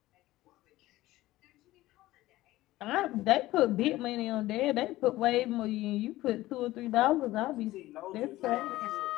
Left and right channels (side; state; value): right; quieter; 17.0 dB